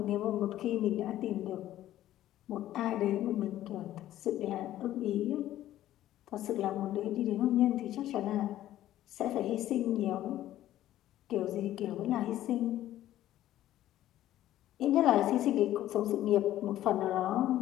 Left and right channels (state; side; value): quieter; right; 13.4 dB